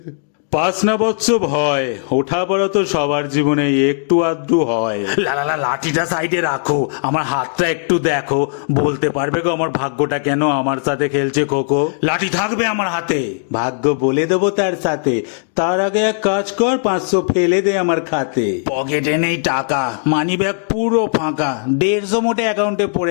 পাস না বৎস ভয়, ওঠা পড়া তো সবার জীবনে একটু আধটু হয়। লাঠিটা সাইডে রাখো, আমার হাতটা একটু দেখো, বলতে পারবে গো আমার ভাগ্যটা কেন আমার সাথে খেলছে খোকো? লাঠি থাকবে আমার হাতে, ভাগ্য বলে দেবো তার সাথে। তার আগে এক কাজ কর, 500 ফেলে দে আমার খাতে। পকেটে নেই টাকা, মানি ব্যাগ পুরো ফাঁকা, 150 মোটে অ্যাকাউন্টে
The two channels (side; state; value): right; silent; digital silence